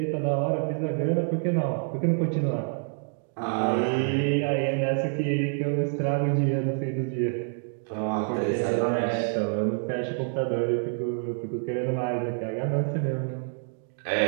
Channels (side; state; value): left; silent; 60 dB below the other